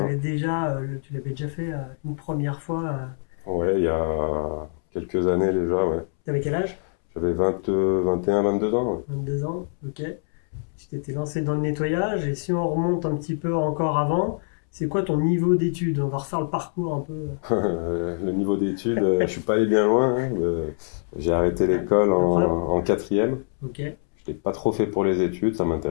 déjà, tu l'avais déjà fait une première fois. Ouais, il y a quelques années déjà, ouais. T'avais quel âge? J'avais 21, 22 ans, ouais. 22 ans, ok. Tu t'étais lancé dans le nettoyage, et si on remonte un petit peu encore avant, c'est quoi ton niveau d'études? On va refaire le parcours un peu. Le niveau d'études, je suis pas allé bien loin, hein. J'ai arrêté l'école en 4e. Ok. Je n'étais pas trop fait pour les études, ça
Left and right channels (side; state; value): right; silent; 62 dB below the other